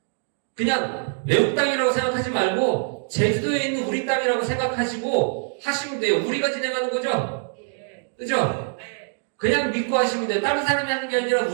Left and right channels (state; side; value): silent; left; digital silence